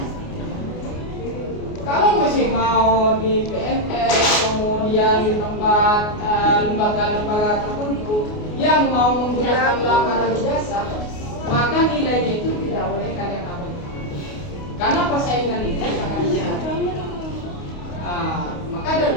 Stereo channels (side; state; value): right; late; 28 ms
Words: Kalau masih mau di PNS, kemudian di tempat lembaga-lembaga tertentu yang mau menggunakan lamaran ijazah, maka nilainya itu tidak boleh kalian ambil. Karena persaingan itu sangat besar. Maka